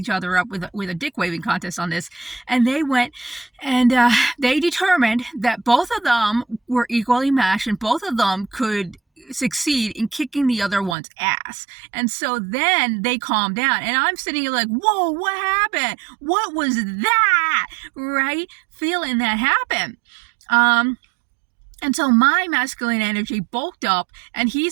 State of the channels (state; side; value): drops out; left; at 11.0 s